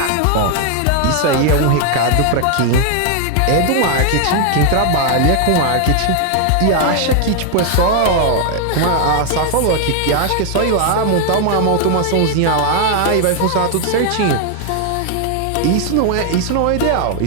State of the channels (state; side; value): different; both; correlation 0.00